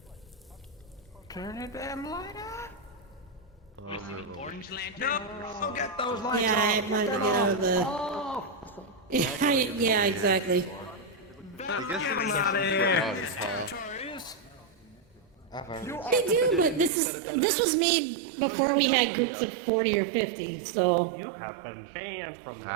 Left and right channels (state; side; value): drops out; left; at 16.9 s